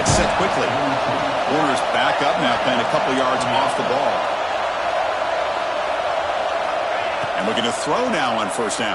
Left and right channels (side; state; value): both; identical; correlation 1.00